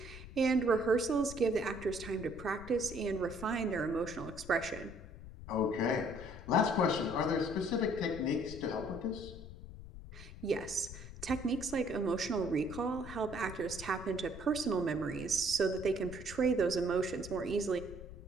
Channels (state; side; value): noise; left; rumble, 14 dB below the sound